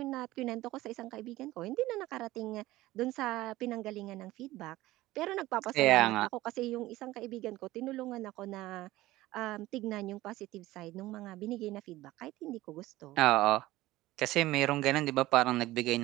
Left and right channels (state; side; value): quieter; left; 17.3 dB